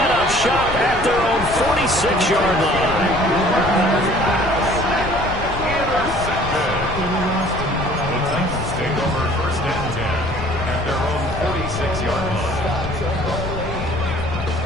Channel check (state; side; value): noise; left; rumble, 9 dB below the sound